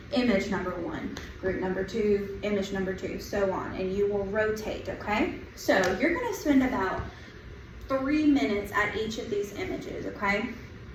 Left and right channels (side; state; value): both; identical; correlation 1.00